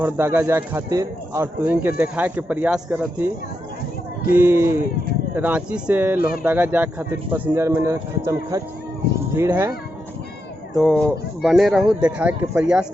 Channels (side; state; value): both; normal; correlation 0.85